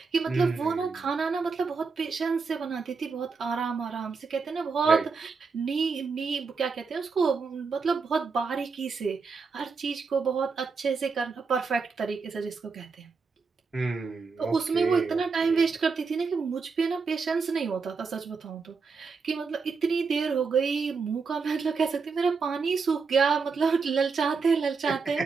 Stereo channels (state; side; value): quieter; left; 4.9 dB